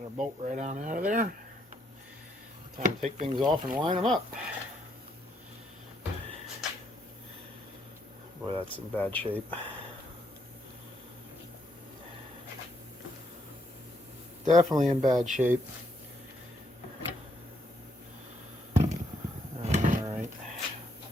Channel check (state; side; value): normal; both; correlation 0.74